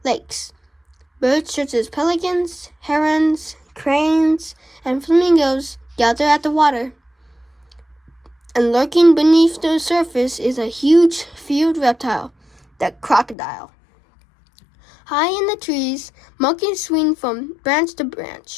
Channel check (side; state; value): right; drops out; at 13.4 s